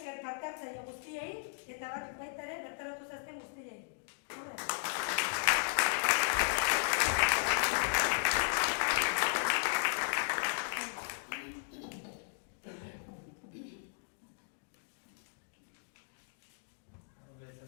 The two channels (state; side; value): silent; right; digital silence